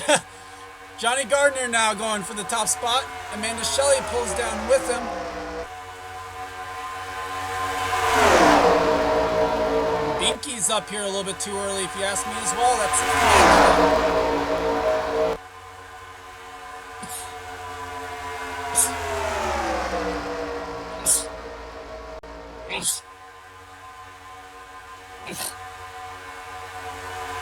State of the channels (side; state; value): both; identical; correlation 1.00